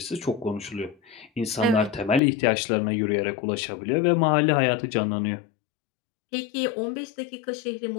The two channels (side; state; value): right; drops out; at 2.2 s